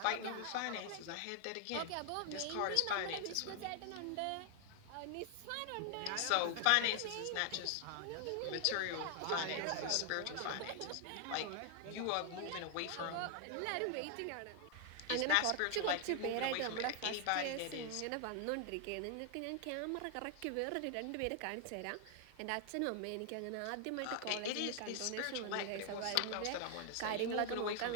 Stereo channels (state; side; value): different; both; correlation 0.00